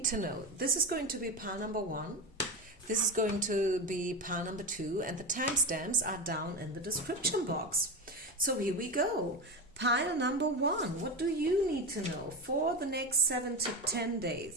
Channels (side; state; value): both; normal; correlation 0.19